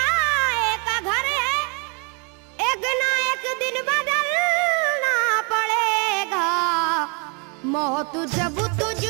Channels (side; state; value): left; quieter; 34.2 dB